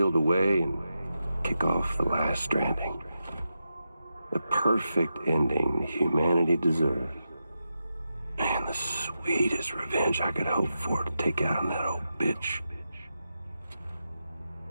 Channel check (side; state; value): both; inverted; correlation -0.88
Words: away and kick off the last Stranding. The perfect ending humanity deserves. Man, the sweetest revenge I could hope for to take out on that old bitch.